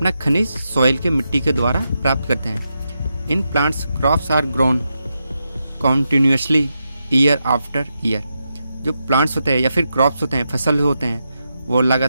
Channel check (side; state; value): both; inverted; correlation -0.86